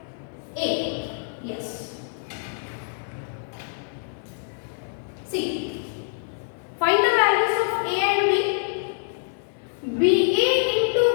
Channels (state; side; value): silent; right; 61 dB below the other